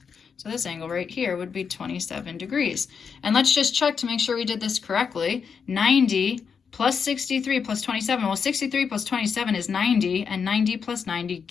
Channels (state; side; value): quieter; right; 6.2 dB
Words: So this angle right here would be 27 degrees. And let's just check to make sure we did this correctly. 90 plus 63 plus 27. Well, 63 plus 27 is 90, and 90 plus 90